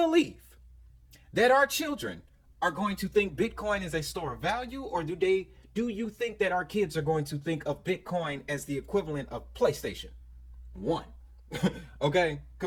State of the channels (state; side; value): identical; both; correlation 1.00